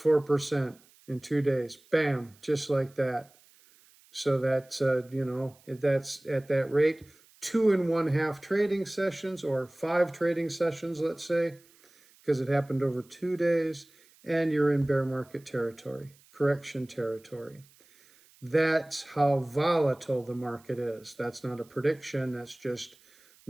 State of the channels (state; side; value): noise; right; hiss, 29 dB below the sound